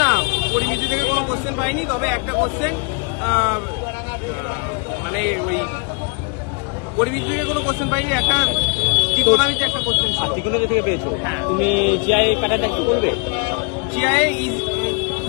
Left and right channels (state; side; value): quieter; right; 34.6 dB